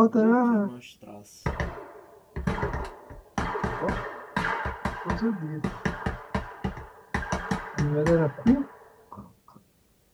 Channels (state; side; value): identical; both; correlation 1.00